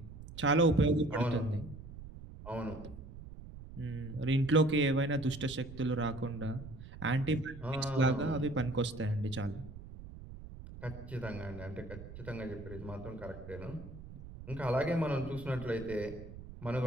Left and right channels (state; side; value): noise; right; rumble, 14 dB below the sound